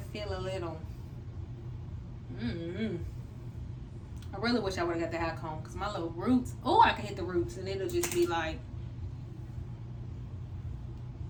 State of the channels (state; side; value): identical; both; correlation 1.00